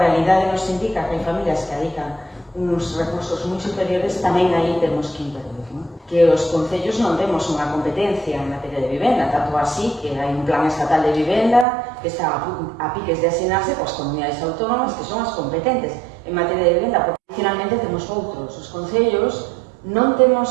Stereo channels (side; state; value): left; drops out; at 11.7 s